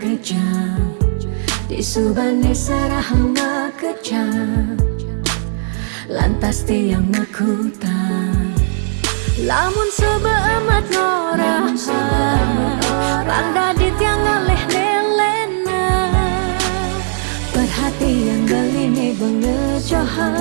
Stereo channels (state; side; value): silent; left; digital silence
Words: Disubane serahan makejam, lantas tiang makutang. Lamun sebeamat norahan, pangdadi tiang ngaleh nelena. Perhatian beline